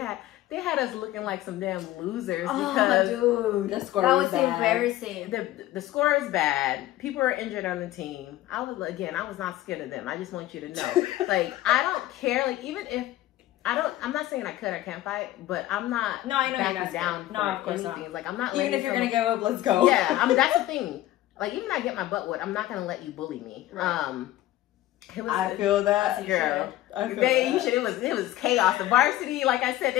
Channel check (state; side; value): quieter; right; 15.2 dB